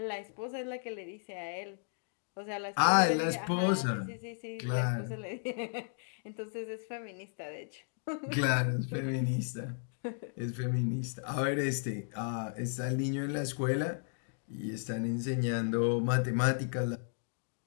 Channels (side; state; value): right; silent; digital silence